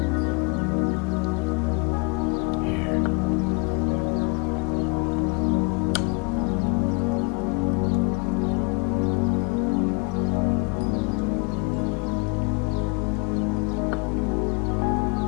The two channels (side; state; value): right; quieter; 30.7 dB